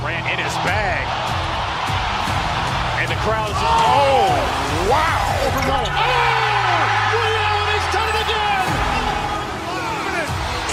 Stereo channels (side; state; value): both; identical; correlation 1.00